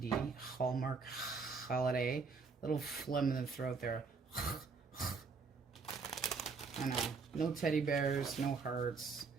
Hallmark holiday. Little phlegm in the throat there. I know. No teddy bears, no hearts.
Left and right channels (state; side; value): quieter; left; 4.8 dB